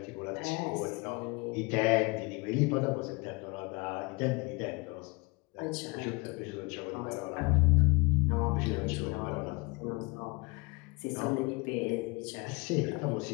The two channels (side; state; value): right; quieter; 27.4 dB